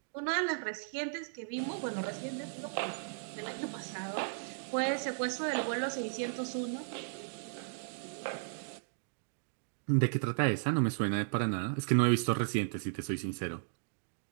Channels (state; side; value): silent; left; digital silence